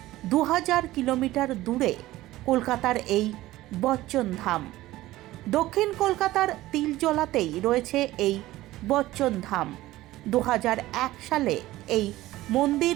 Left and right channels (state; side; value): quieter; left; 16.6 dB